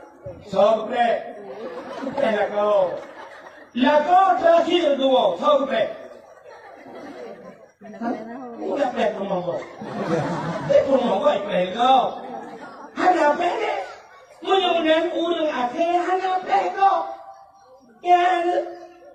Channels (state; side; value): identical; both; correlation 1.00